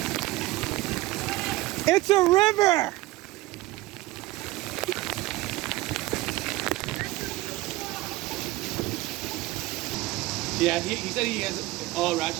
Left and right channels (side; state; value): left; quieter; 18.8 dB